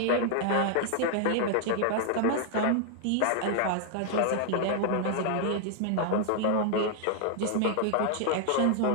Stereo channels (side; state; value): both; different; correlation 0.00